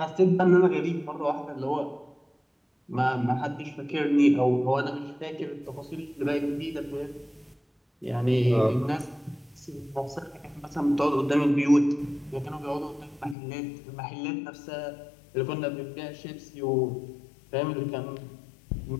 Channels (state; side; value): drops out; right; at 13.4 s